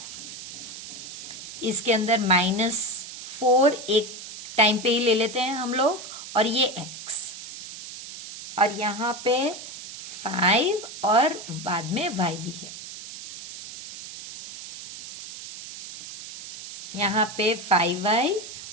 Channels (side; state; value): right; noise; hiss, 12 dB below the sound